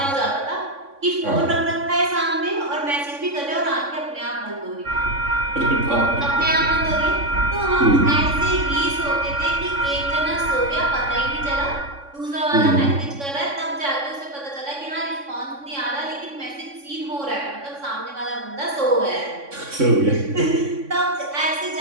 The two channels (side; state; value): left; late; 3.6 ms